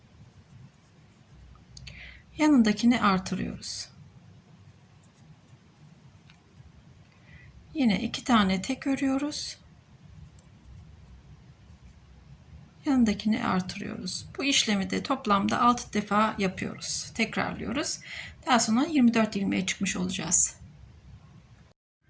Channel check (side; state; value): both; identical; correlation 1.00